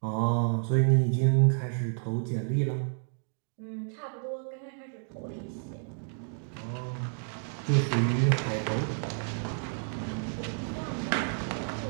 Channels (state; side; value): silent; left; 58 dB below the other